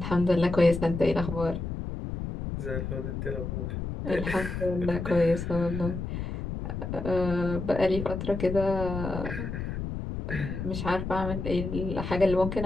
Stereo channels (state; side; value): noise; left; rumble, 5 dB below the sound